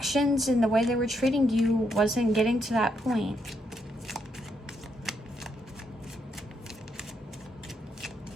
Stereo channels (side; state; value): both; normal; correlation 0.78